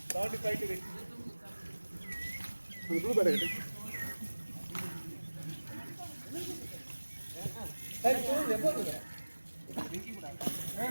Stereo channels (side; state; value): both; inverted; correlation -1.00